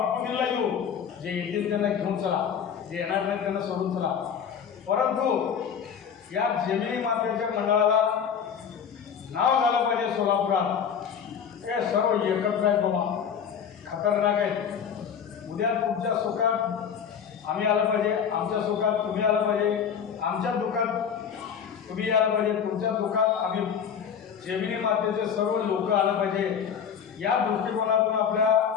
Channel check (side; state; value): right; quieter; 7.6 dB